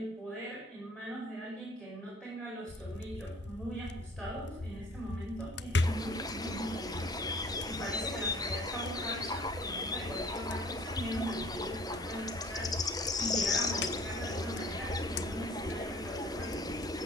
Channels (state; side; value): normal; both; correlation 0.53